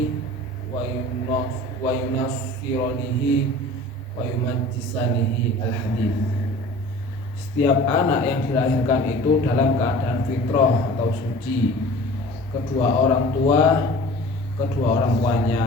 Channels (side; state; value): both; normal; correlation 0.43